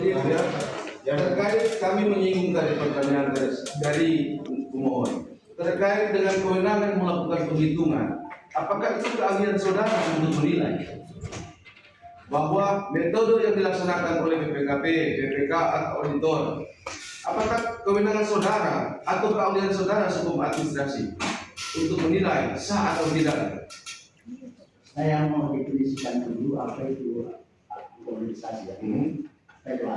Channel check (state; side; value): identical; both; correlation 1.00